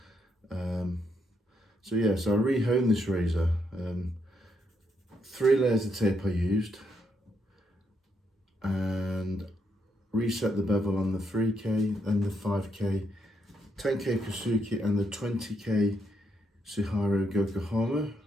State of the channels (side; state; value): both; normal; correlation 0.78